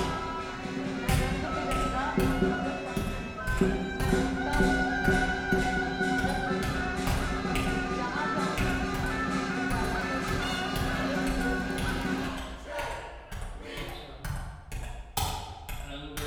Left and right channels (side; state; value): both; identical; correlation 1.00